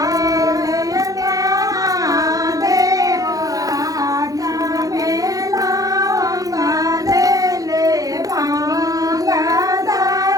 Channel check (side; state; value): left; late; 0.17 ms